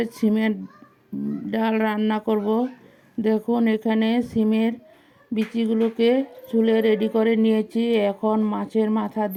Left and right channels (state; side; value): identical; both; correlation 1.00